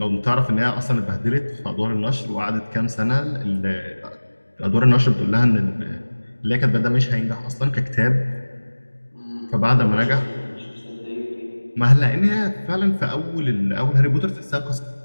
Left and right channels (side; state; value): both; inverted; correlation -1.00